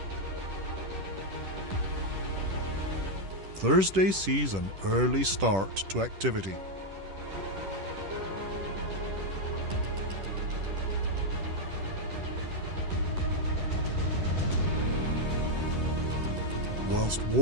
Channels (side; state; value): left; late; 10 ms